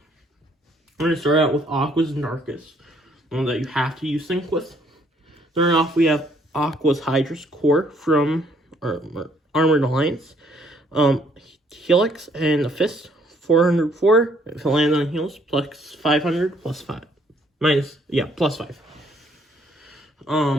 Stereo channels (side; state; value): both; normal; correlation 0.65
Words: to start out with Aqua's and Darkest, one that you have to use Sync with. Starting off, we have Aqua's Hydra's Core from Armored Alliance. Helix and a Fist, 404. If it lands on heals, plus 500, plus 5. Plus 5.